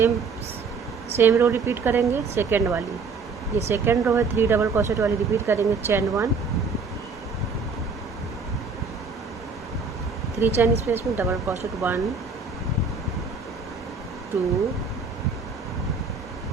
same row repeat करेंगे, सेकेंड वाली, ये सेकेंड रो है 3 डबल क्रोशेट वाली रिपीट करेंगे, चैन 1 3 चैन स्पेस में double crochet 1 2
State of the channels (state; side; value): quieter; left; 4.7 dB